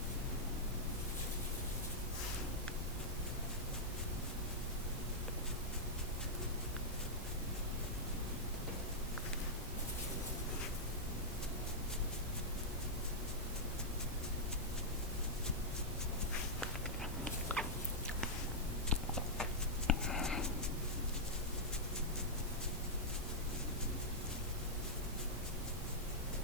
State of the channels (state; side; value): normal; both; correlation -0.08